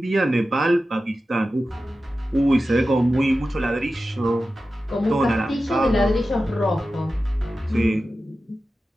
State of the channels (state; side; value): normal; both; correlation 0.93